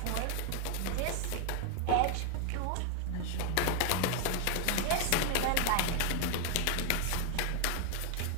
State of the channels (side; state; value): both; different; correlation 0.01